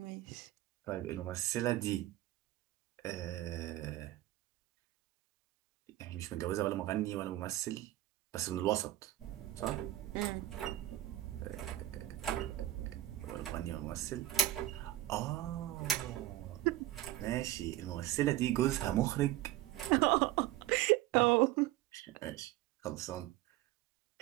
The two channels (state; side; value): quieter; left; 15.3 dB